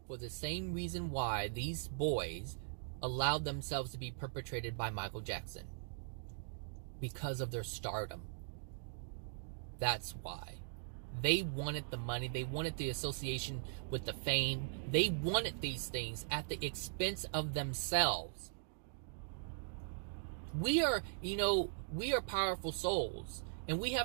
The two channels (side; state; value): left; silent; digital silence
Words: For the same reason why these boys allowed themselves to be perpetrated by Michael Jackson. Because of their stardom. That's why. They wanted the money. They wanted the association with the fame. They wanted these things at the expense of themselves. We are powerful souls. And we